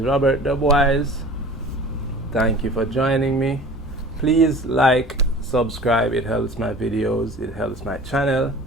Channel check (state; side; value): normal; both; correlation 0.41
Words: Robert Dubwise. Thank you for joining me. Please like, subscribe. It helps my videos, it helps my channel.